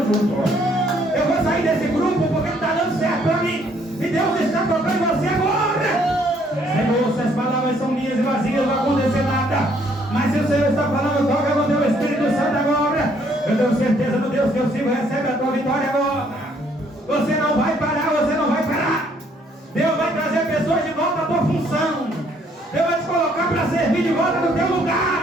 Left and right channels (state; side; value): normal; both; correlation 0.66